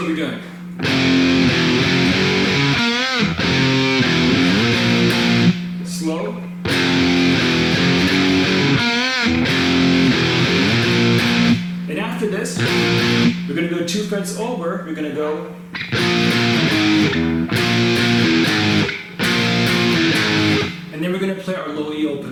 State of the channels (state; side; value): identical; both; correlation 1.00